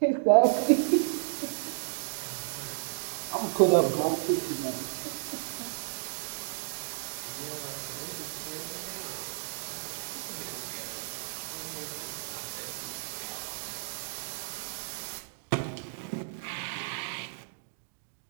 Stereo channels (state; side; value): silent; left; digital silence